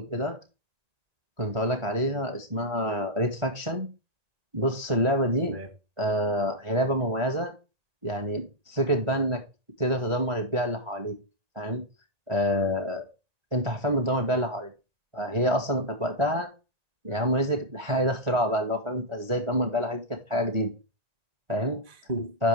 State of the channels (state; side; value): late; left; 1.9 ms